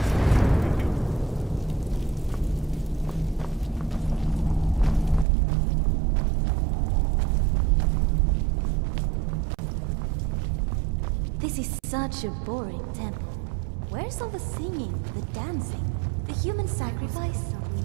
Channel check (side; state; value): left; drops out; at 5.2 s